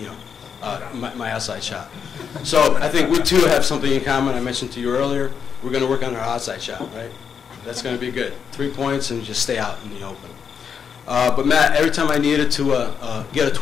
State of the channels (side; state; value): right; quieter; 7.0 dB